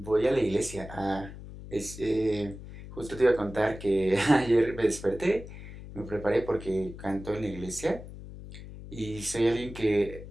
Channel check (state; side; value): noise; left; hum, 13 dB below the sound